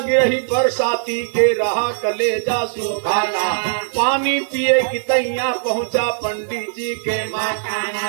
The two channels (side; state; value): left; silent; digital silence